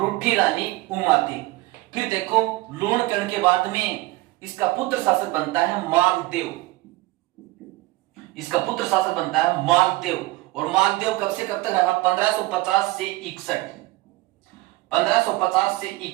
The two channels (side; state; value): left; quieter; 19.9 dB